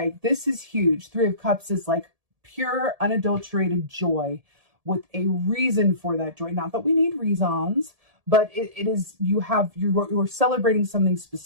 huge. 3 of Cups is like pure, unadulterated joy with a reason for that joy. Not that we need reasons, but it is, you're celebrating something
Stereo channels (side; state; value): left; late; 1.7 ms